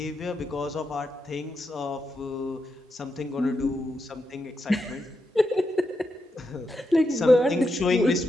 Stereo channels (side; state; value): both; normal; correlation 0.85